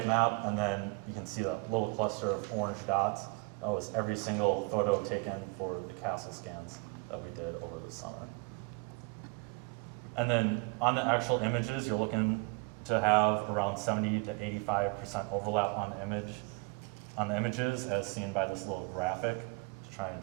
map, and then you can see that little cluster of orange dots. That was every single photo taken for the castle scans that we did over the summer. And then on the actual images, you're looking to have around 70 to 85% overlap on the images, as seen by this little graphic to try and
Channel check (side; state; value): left; quieter; 30.5 dB